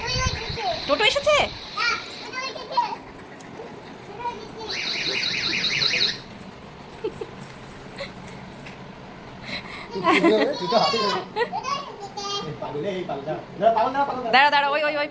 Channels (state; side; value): identical; both; correlation 1.00